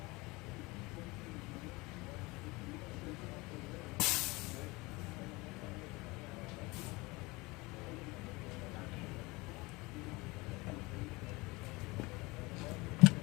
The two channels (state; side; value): quieter; right; 23.6 dB